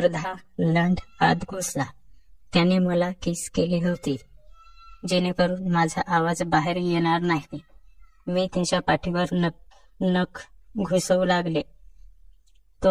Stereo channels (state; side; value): identical; both; correlation 1.00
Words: लंड आत घुसला. त्याने मला किस केली होती जेणेकरून माझा आवाज बाहेर येणार नाही. मी त्याच्या पाठीवर नख घुसवू लागले.